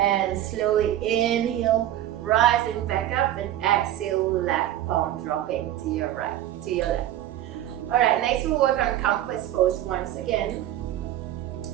slowly inhale, rising back up, and exhale, left palm dropping to your right, to your left. All right, next we'll work on compass pose once again.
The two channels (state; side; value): quieter; left; 12.8 dB